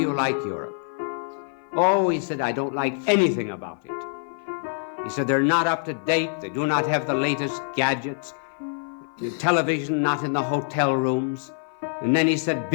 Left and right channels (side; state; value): right; silent; 55 dB below the other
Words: like Europe?" "Oh," he said, "I don't like anything about it." He said, "They're not up to date. They do not have the latest gadgets. The television not in the hotel rooms." And then he said,